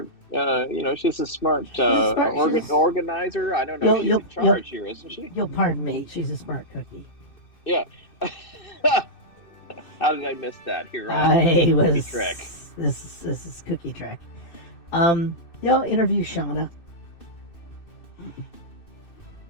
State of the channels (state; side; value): late; right; 2.6 ms